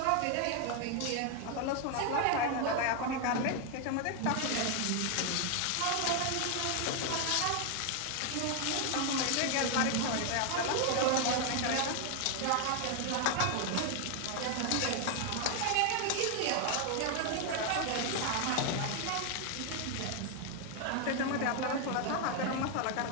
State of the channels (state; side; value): different; both; correlation 0.01